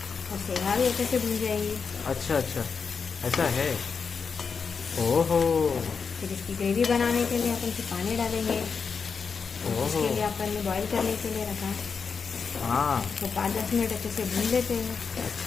शेंगा भी अच्छे से भून जाएंगी। अच्छा अच्छा, ऐसा है। ओहो, फिर इसकी ग्रेवी बनाने के लिए अपन फिर पानी डालेंगे। ओहो। इसके लिए अपन ने बॉईल करने के लिए रखा, हाँ, तो 5-10 मिनट अच्छे से भून लेते हैं।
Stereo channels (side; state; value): right; quieter; 5.6 dB